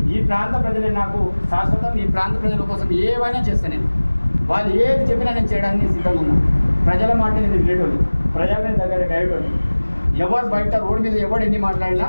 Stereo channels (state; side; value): inverted; both; correlation -1.00